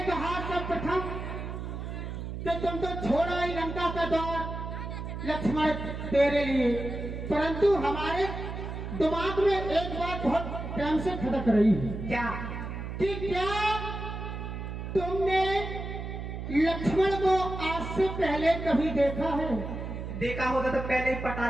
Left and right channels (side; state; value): right; noise; hum, 6 dB below the sound